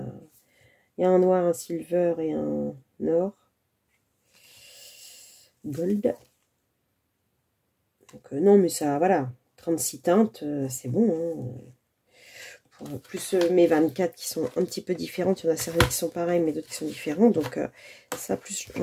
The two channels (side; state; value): both; identical; correlation 1.00